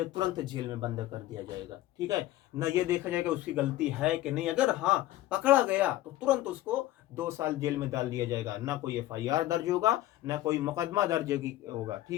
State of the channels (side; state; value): right; quieter; 15.3 dB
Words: तुरंत जेल में बंद कर दिया जाएगा। ठीक है, न ये देखा जाएगा उसकी गलती है कि नहीं, अगर हाँ पकड़ा गया तो तुरंत उसको 2 साल जेल में डाल दिया जाएगा, ना कोई FIR दर्ज होगा, ना कोई मुकदमा दर्ज होगा।